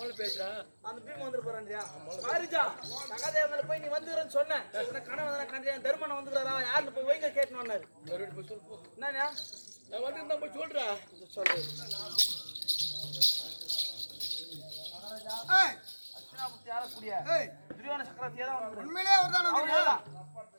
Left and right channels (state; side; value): inverted; both; correlation -1.00